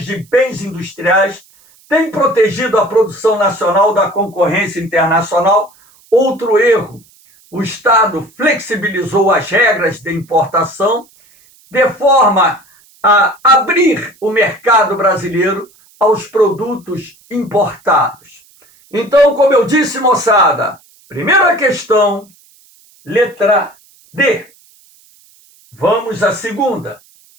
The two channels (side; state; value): right; noise; hiss, 30 dB below the sound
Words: de bens industriais tem protegido a produção nacional da concorrência internacional. Outro erro, o Estado flexibilizou as regras de importação de forma a abrir o mercado brasileiro aos produtos importados. Então, como eu disse, moçada, primeira questão, letra D. Vamos à segunda.